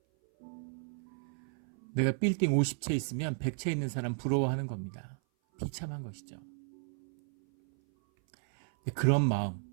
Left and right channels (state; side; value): silent; left; 55 dB below the other